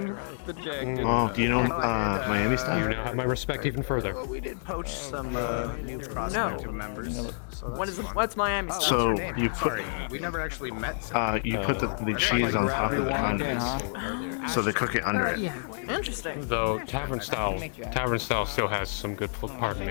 the Jack. Oh, do you know Miami You style? now have my respect even further. We did poach some new No. members. What's Miami style? So you put We never actually met. you put the cheese on top of the condiment, so they cook it under it. Interesting. Though tavern style still has some good. Pardon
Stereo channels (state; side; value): silent; right; digital silence